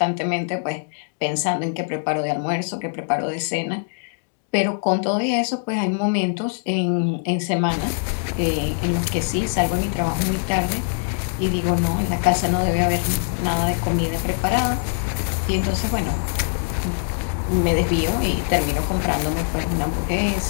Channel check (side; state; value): right; silent; digital silence